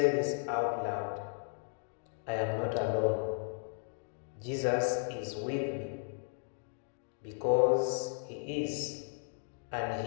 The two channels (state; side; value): silent; right; digital silence